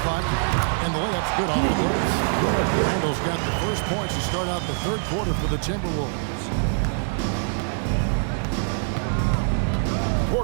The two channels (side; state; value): left; silent; digital silence